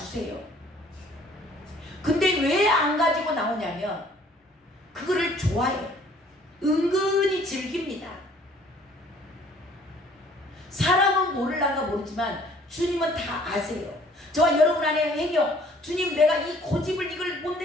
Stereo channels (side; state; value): both; normal; correlation 0.57